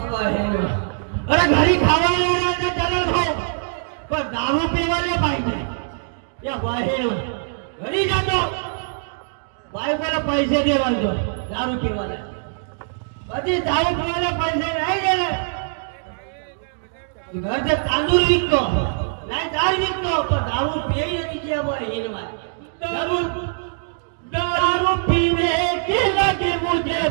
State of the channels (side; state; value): left; silent; digital silence